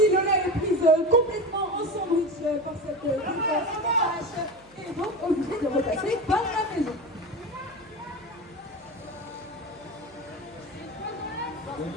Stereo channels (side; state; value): right; noise; hum, 29 dB below the sound